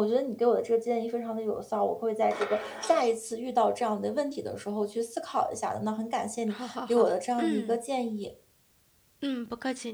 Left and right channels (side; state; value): both; identical; correlation 1.00